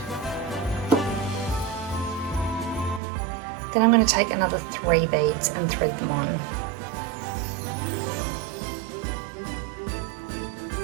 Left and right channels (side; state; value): left; drops out; at 3.0 s